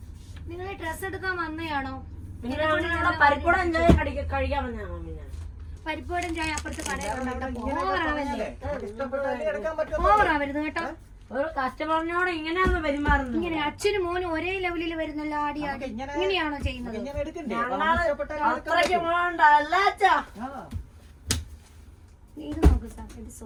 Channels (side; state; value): both; identical; correlation 1.00